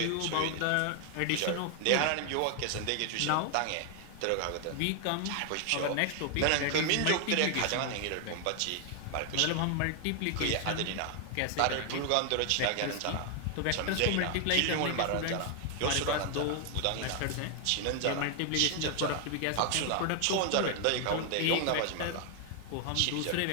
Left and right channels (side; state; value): both; different; correlation 0.00